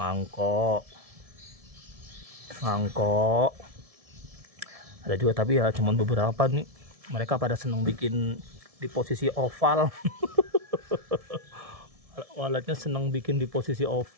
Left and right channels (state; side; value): late; left; 1.7 ms